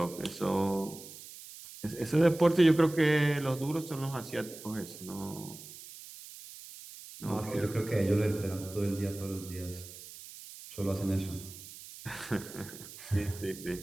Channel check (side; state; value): right; noise; hiss, 15 dB below the sound